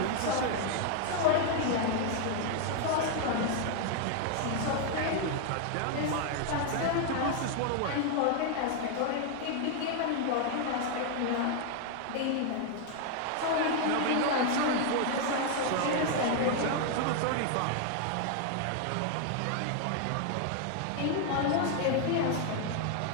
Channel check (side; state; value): both; different; correlation 0.00